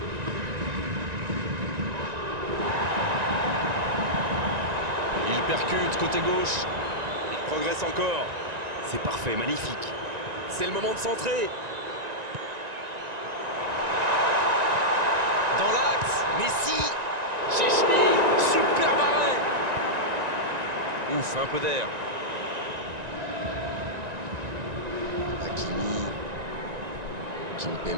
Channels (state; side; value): late; left; 1.9 ms